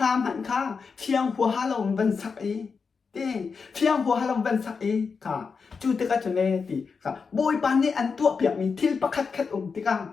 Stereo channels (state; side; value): quieter; right; 5.3 dB